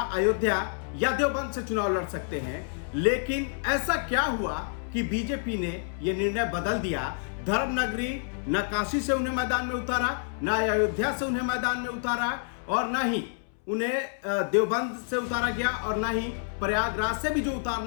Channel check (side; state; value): right; silent; 59 dB below the other